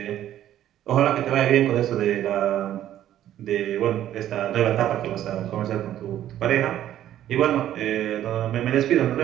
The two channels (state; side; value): quieter; left; 12.0 dB